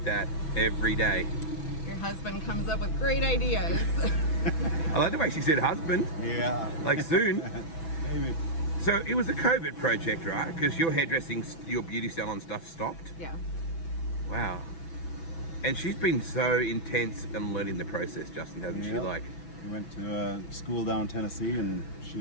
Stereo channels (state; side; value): late; right; 6.1 ms